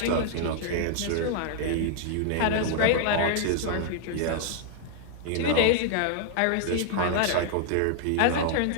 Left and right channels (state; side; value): different; both; correlation -0.01